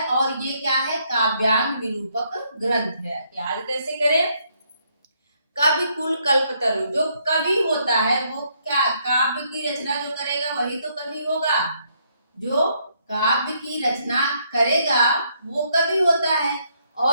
और ये क्या है? काव्यांग निरूपक ग्रंथ है। याद कैसे करें? कविकुल कल्पतरु, जो कवि होता है वो क्या, काव्य की रचना जो करेगा वही तो कवि होगा। जो काव्य की रचना करेगा वो कवि होता है।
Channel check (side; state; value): both; inverted; correlation -0.72